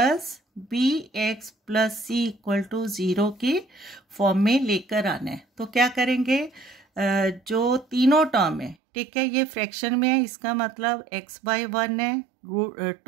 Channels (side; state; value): left; drops out; at 8.8 s